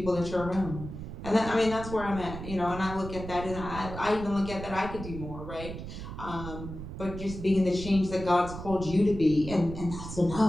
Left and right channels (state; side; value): noise; right; rumble, 9 dB below the sound